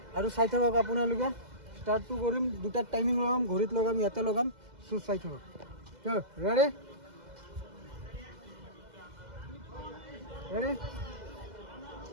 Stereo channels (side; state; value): left; late; 2.0 ms